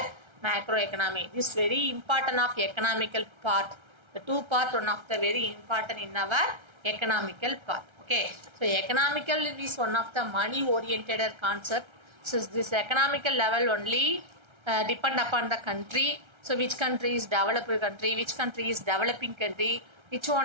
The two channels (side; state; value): left; late; 1.3 ms